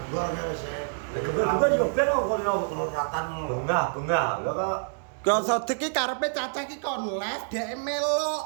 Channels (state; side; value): silent; left; digital silence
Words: ngene sik. Kedua-dua yo ben kok kulino ratan ngono lho. bunga. Lah kok Kok Sodik ki karepe Cacah ki kon live dhek